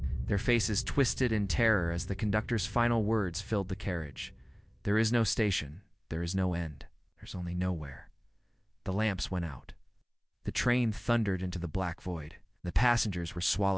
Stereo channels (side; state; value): both; identical; correlation 1.00